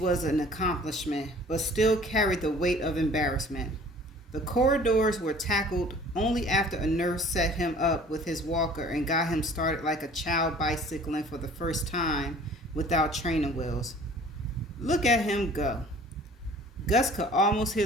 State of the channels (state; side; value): normal; both; correlation 0.50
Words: an accomplishment, but still carried the weight of embarrassment. The corridors were tackled only after a nurse set him up with his walker and got him started like a child bicycling for the first time without training wheels. Look at him go. Gus could almost